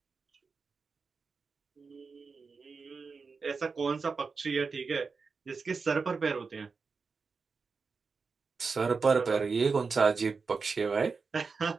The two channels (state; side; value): quieter; left; 4.8 dB